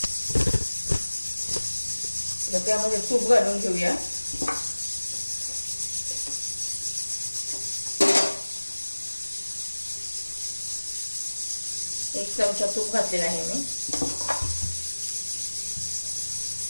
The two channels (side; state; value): both; inverted; correlation -1.00